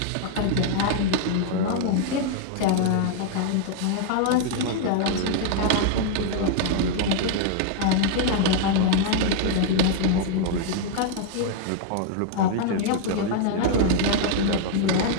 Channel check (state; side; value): different; both; correlation 0.00